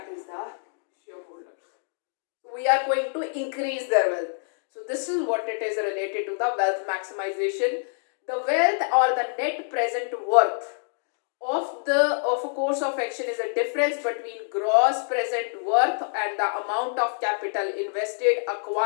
is the shareholders. So we are going to increase their wealth. So this is what it is related to the wealth maximization. The wealth or the net present worth of a course of action is a difference between gross present worth and the amount of capital invested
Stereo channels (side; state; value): right; silent; digital silence